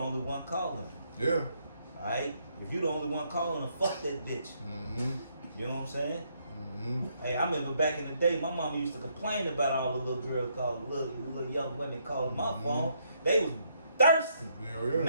one calling. Yeah. Alright? If you the only one calling her, fuck that bitch. You know what I'm saying? Hey, I remember back in the day, my mama used to complain about all the little girls calling, little young women calling my phone. They was thirsty. Yeah.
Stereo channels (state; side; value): inverted; both; correlation -0.73